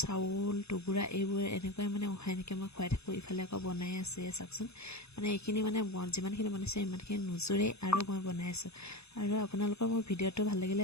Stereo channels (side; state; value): right; late; 0.79 ms